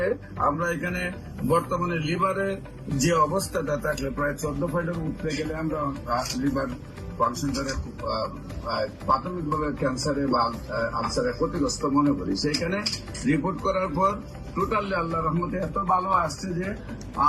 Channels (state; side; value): identical; both; correlation 1.00